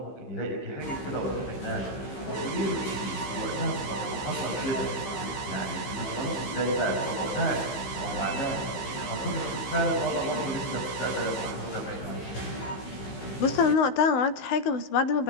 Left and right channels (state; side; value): late; right; 15 ms